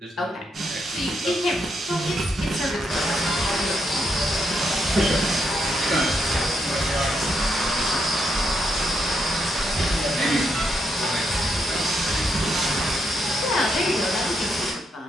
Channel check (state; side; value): normal; both; correlation 0.78